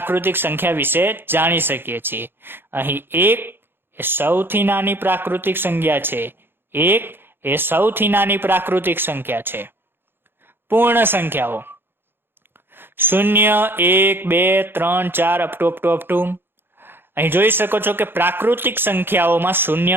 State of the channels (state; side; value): late; left; 0.10 ms